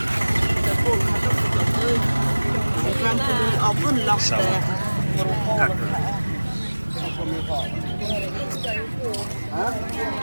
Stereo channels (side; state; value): both; inverted; correlation -1.00